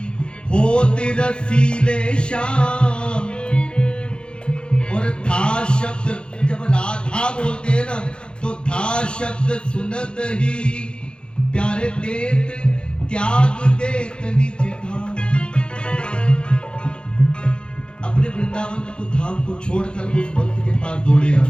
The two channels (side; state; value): right; late; 0.053 ms